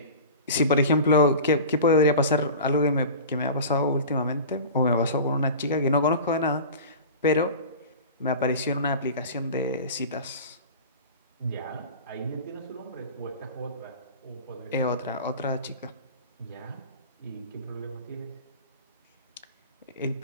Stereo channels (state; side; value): inverted; both; correlation -0.35